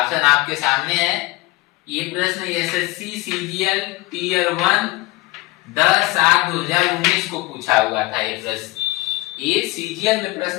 आपके सामने है। ये प्रश्न एसएससी सीजीएल टीयर 1 10/7/2019 को पूछा हुआ था। ये प्रश्न ये सीजीएल में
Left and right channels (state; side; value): quieter; right; 20.9 dB